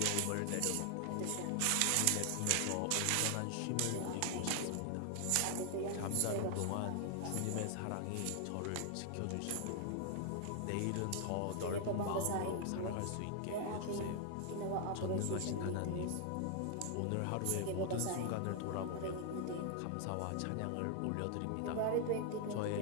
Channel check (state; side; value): different; both; correlation 0.00